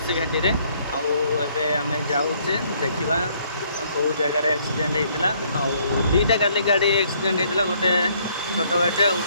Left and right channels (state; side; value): inverted; both; correlation -0.65